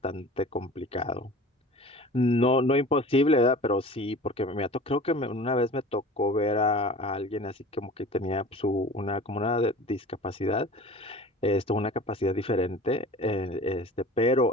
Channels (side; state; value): both; normal; correlation 0.40